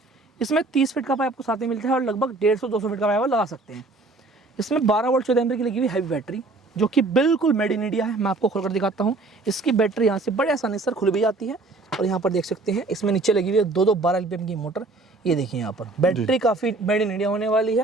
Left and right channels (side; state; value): left; quieter; 3.3 dB